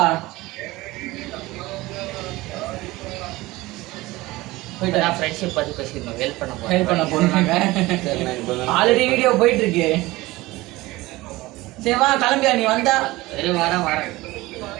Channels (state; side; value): quieter; left; 19.7 dB